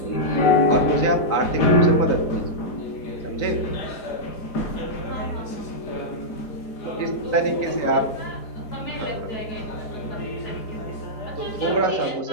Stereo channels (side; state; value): right; late; 4.8 ms